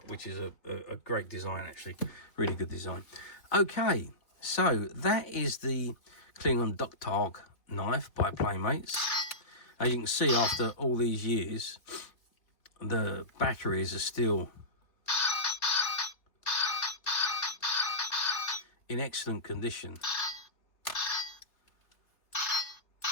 which is a great design, actually, really good design. Okay, so that is the Klingon Tahg knife by Playmates. As you can see, after all these years, the batteries are still in excellent condition.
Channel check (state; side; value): late; right; 3.3 ms